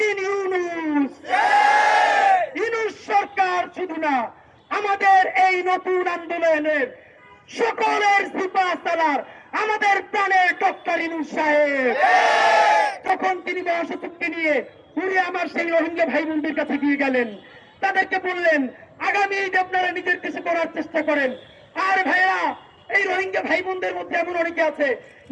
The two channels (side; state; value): both; identical; correlation 1.00